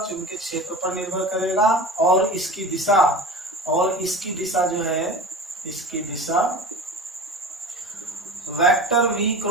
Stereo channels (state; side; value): normal; both; correlation 0.34